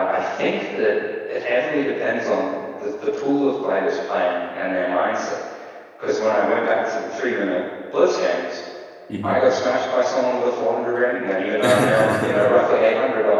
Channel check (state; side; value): identical; both; correlation 1.00